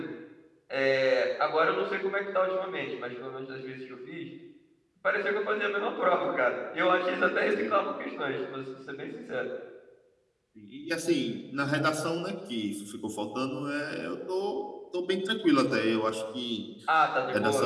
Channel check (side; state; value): both; identical; correlation 1.00